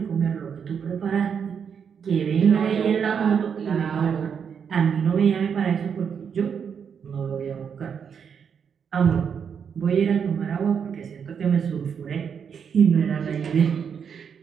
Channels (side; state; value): left; quieter; 7.1 dB